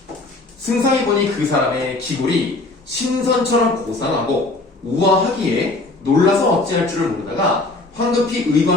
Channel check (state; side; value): quieter; right; 3.1 dB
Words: 승상이 보니 그 사람의 기골이 신선처럼 고상하고 우아하기에 놀라서 어찌할 줄을 모르다가 황급히